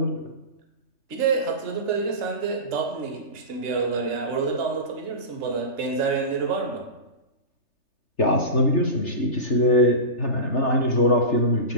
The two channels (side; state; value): right; late; 3.3 ms